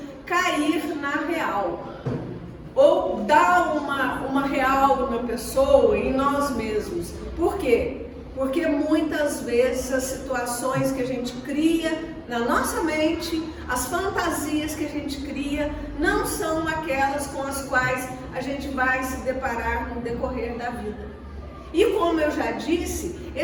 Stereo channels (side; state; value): both; identical; correlation 1.00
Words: cair na real. Ou dar uma real na pessoa, em nós mesmos. Por quê? Porque muitas vezes as situações que a gente cria na nossa mente, as fantasias que a gente cria, não são aquelas com as quais a gente vai se deparar no decorrer da vida. E como eu já disse,